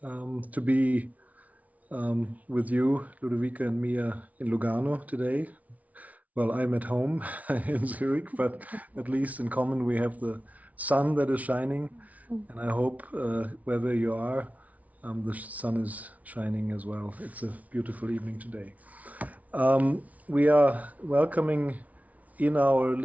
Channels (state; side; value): late; left; 0.070 ms